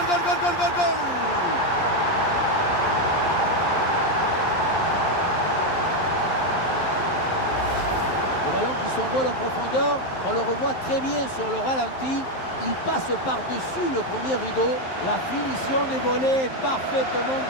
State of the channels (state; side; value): late; right; 11 ms